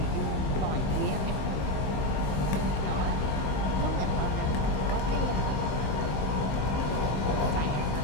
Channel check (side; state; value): right; late; 15 ms